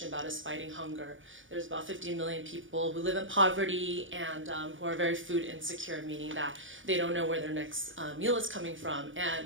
about is fighting hunger. There's about 50 million people who live in poverty and who are very food insecure, meaning that they don't know where their next meal is coming from.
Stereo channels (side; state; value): left; late; 0.57 ms